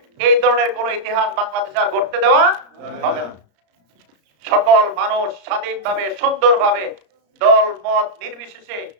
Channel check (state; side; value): late; left; 34 ms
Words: এই ধরনের কোন ইতিহাস বাংলাদেশে আর ঘটতে দেওয়া হবে না। সকল মানুষ স্বাধীনভাবে, সুন্দরভাবে, দল মত নির্বিশেষে